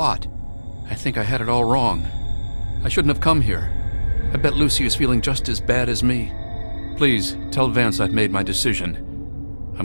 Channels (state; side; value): inverted; both; correlation -1.00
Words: I think I had it all wrong. I shouldn't have come here. I bet Lucy is feeling just as bad as me. Please, tell Vance I've made my decision.